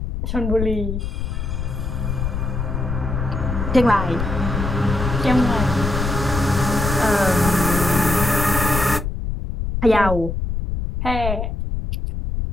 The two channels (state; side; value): noise; left; rumble, 3 dB below the sound